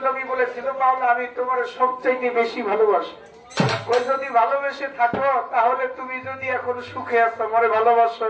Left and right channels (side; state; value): both; identical; correlation 1.00